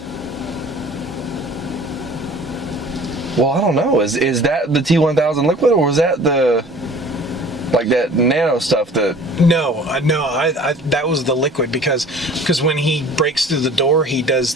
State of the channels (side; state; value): both; normal; correlation 0.47